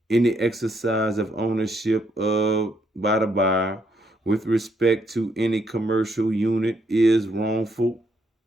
any exercise of ownership by the buyer with respect to any commercial unit is wrongful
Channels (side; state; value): both; normal; correlation 0.74